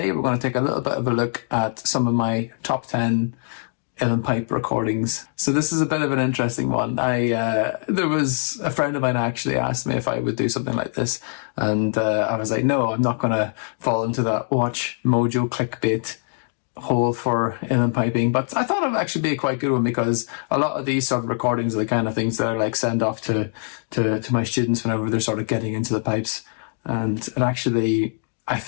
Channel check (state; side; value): silent; right; 63 dB below the other